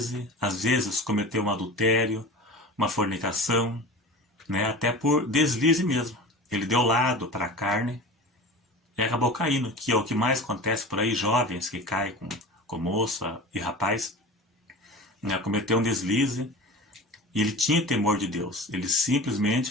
às vezes cometeu um adultério, uma fornicação, né? Até por deslize mesmo. Ele deu lado para a carne e acabou caindo, que é o que mais acontece por aí, jovens que caem com moça e rapaz, né, cometeu um deslize, e ele tinha temor de Deus, ele simplesmente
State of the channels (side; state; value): both; normal; correlation 0.34